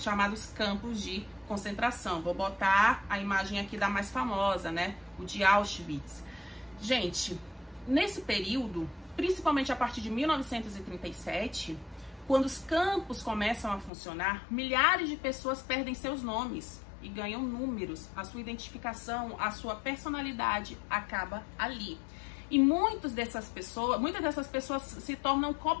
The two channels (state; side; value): drops out; right; at 13.9 s